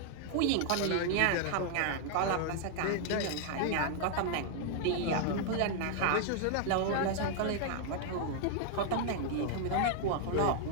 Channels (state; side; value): different; both; correlation 0.00